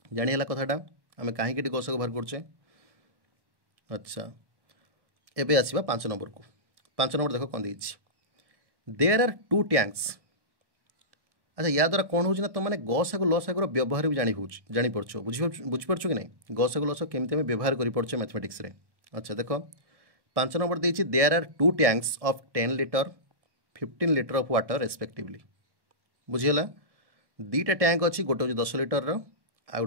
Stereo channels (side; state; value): left; late; 1.1 ms